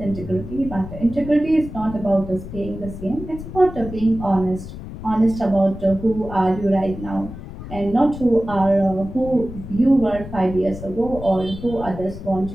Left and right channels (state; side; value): noise; left; rumble, 11 dB below the sound